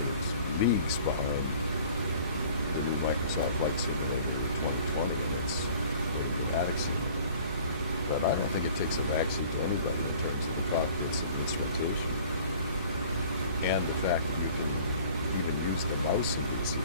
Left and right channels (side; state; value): both; inverted; correlation -0.50